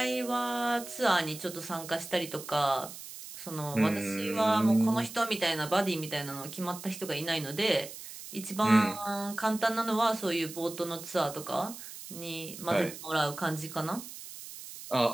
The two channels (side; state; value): right; noise; hiss, 12 dB below the sound